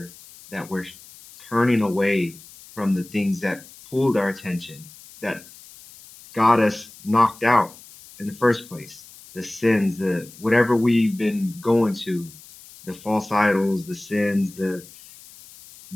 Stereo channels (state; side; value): noise; left; hiss, 21 dB below the sound